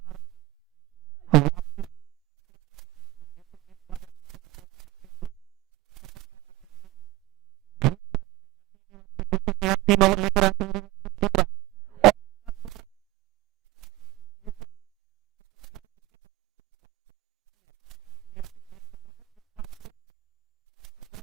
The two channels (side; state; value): left; quieter; 18.6 dB